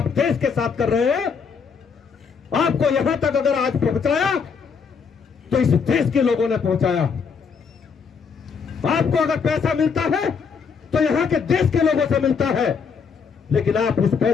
देश के साथ कर रहे हैं, आपको यहां तक अगर आज पहुंचाया तो इस देश के लोगों ने पहुंचाया। आपको अगर पैसा मिलता है तो यहां के देश के लोगों से मिलता है, लेकिन आप उस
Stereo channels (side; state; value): right; quieter; 5.9 dB